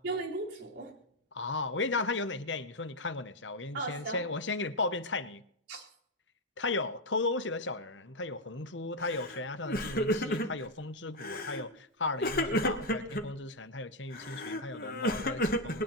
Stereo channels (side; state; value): both; normal; correlation 0.03